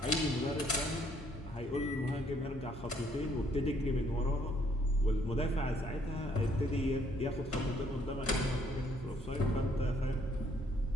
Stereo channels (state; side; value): normal; both; correlation 0.67